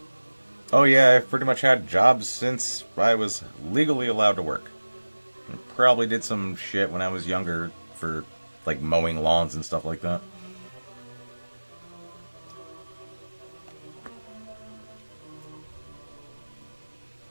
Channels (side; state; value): both; inverted; correlation -1.00